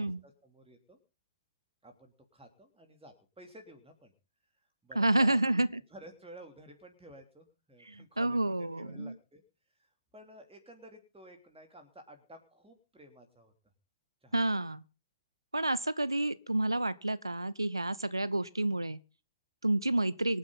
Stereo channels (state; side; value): inverted; both; correlation -0.95